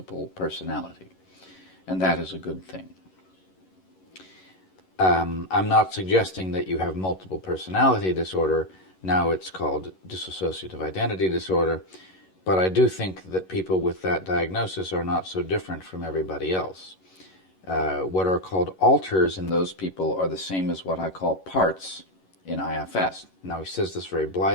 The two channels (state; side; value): late; right; 11 ms